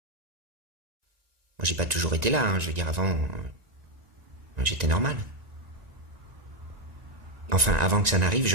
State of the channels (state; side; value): late; left; 1.9 ms